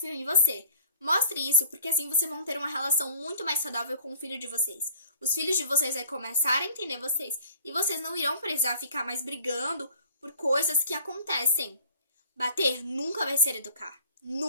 em você. Mostre isso porque assim vocês vão ter uma relação muito mais saudável com o filho de vocês. Os filhos de vocês vão começar a entender vocês e vocês não irão precisar ficar mais brigando por coisas que acontecem. Bater nunca vai ser educar.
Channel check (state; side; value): inverted; both; correlation -0.49